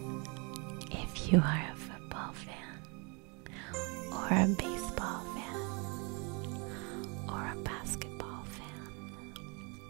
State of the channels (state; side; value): quieter; left; 32.5 dB